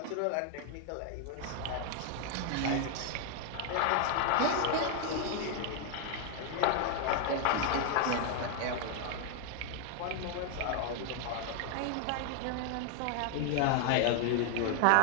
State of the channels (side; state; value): both; different; correlation 0.00